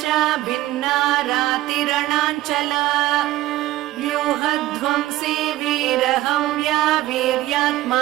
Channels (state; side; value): quieter; left; 15.7 dB